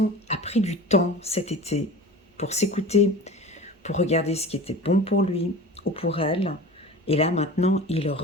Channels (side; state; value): both; normal; correlation 0.36